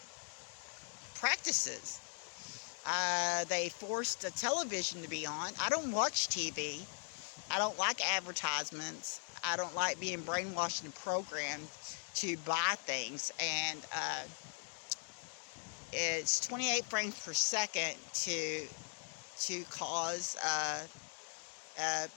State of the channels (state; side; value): silent; right; 51 dB below the other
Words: practices. They forced the television to be on. I don't watch TV. I don't like advertisements. I don't like being brainwashed and programmed to buy things. And it's 28 frames per second to cause